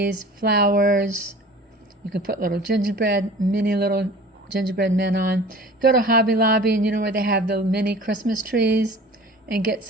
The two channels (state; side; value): normal; both; correlation 0.43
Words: flowers. You can put little gingerbread, mini little gingerbread men on. Go to Hobby Lobby and you know where they have the mini Christmas trees, and get